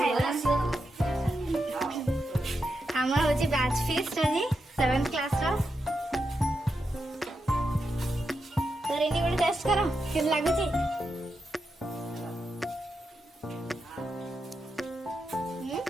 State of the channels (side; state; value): both; normal; correlation 0.86